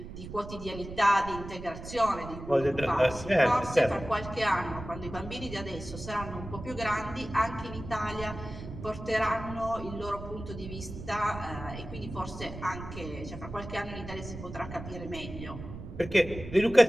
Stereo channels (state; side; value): noise; right; rumble, 11 dB below the sound